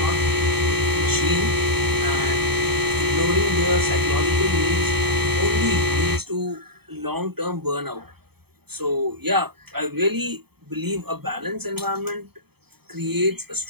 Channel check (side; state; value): left; late; 0.97 ms